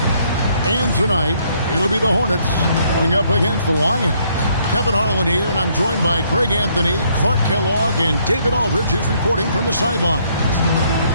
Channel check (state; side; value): inverted; both; correlation -0.68